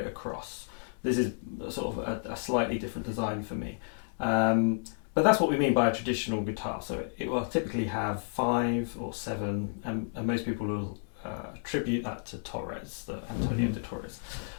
across. This is sort of a slightly different design for me. But that's what we mean by a traditional guitar. So it will typically have 5 or 7, and most people will attribute that to Torres, the Antonio de Torres.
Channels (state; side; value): silent; right; digital silence